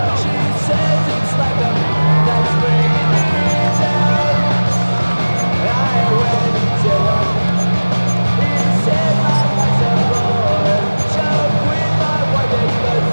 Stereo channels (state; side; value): inverted; both; correlation -1.00